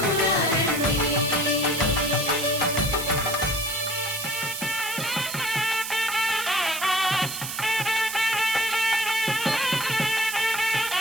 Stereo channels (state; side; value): noise; right; hiss, 6 dB below the sound